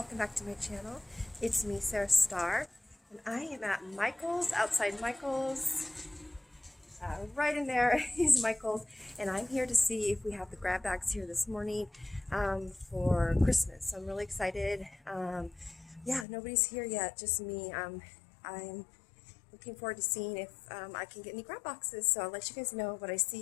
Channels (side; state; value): right; drops out; at 16.2 s